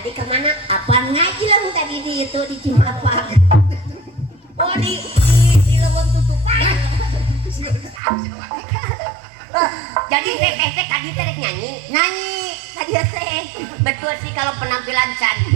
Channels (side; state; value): left; drops out; at 8.0 s